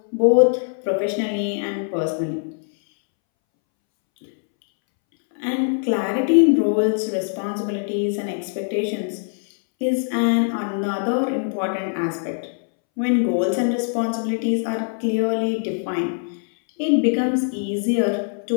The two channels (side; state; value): right; silent; 64 dB below the other